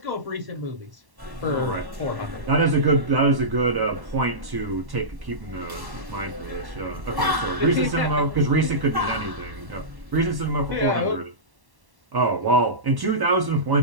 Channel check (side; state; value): left; late; 1.1 ms